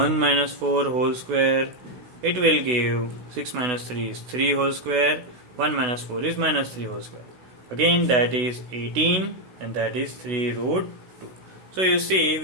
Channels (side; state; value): left; late; 16 ms